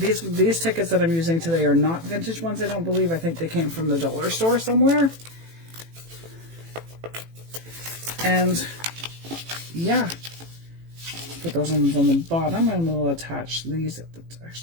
tickets that I'm using today are not vintage ones, I don't believe. I think they came from the dollar store somewhere. And yeah, put those ones on the bottom and we'll attach these at the,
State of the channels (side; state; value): left; late; 18 ms